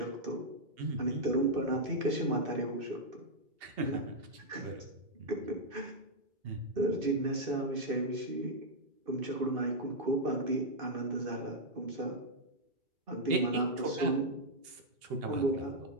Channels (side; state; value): left; late; 2.8 ms